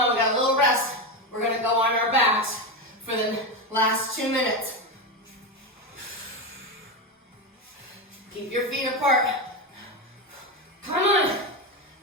we got a little rest. We're gonna go on our backs for the last 2 minutes. Keep your feet apart. Come on.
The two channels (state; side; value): normal; both; correlation 0.14